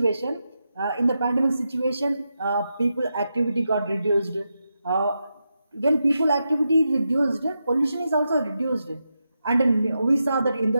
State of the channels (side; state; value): both; inverted; correlation -0.87